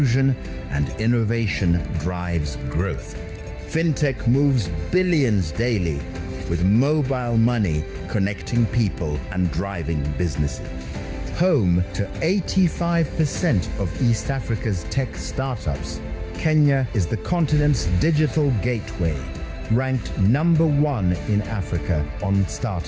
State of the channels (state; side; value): identical; both; correlation 1.00